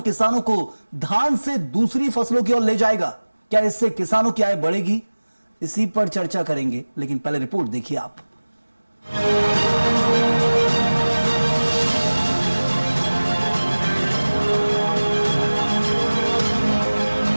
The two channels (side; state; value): both; inverted; correlation -1.00